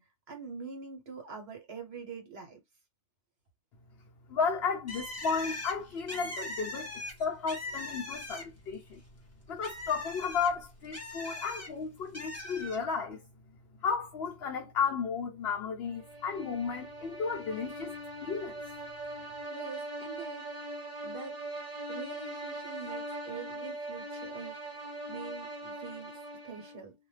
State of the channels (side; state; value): right; quieter; 3.8 dB